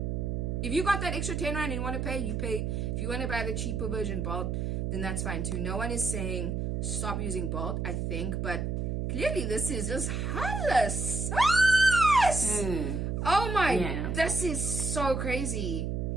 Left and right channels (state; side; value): noise; right; hum, 1 dB below the sound